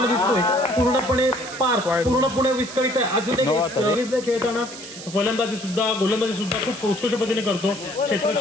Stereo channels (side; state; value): right; noise; hiss, 13 dB below the sound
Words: दिसतोय, पूर्णपणे पूर्णपणे विस्कळीत आहे. अजून एक खेळताना फलंदाजी सुद्धा गोलंदाजी सुद्धा खूप उत्कृष्ट पद्धतीने करतो.